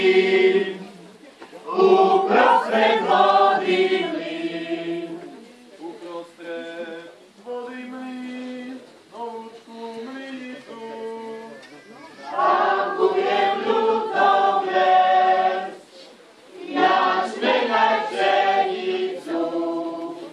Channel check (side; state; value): both; identical; correlation 1.00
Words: uprostred vody mlyn. Uprostred vody mlyn, novúčku mlynicu. Tam budem ľudom les, jačmeň aj pšenicu.